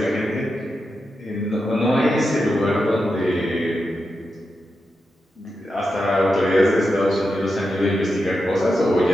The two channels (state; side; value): normal; both; correlation 0.88